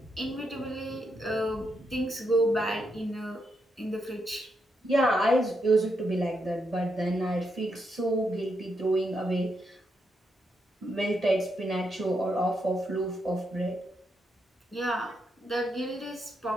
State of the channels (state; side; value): normal; both; correlation 0.81